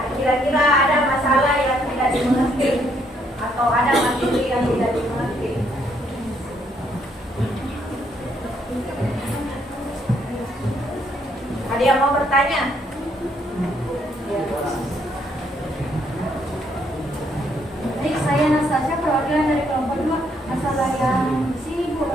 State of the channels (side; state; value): both; normal; correlation 0.70